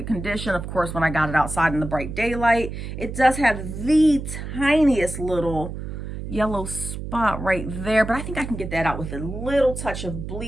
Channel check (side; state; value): right; noise; hum, 7 dB below the sound